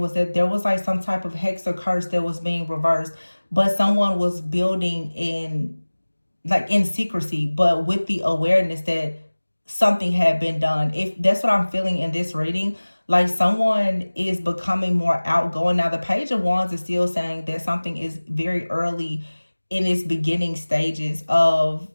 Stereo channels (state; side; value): inverted; both; correlation -1.00